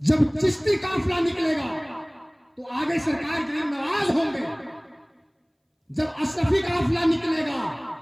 चिश्ती काफिला निकलेगा तो आगे सरकार गरीब नवाज होंगे। जब अशरफी काफिला निकलेगा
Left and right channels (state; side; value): identical; both; correlation 1.00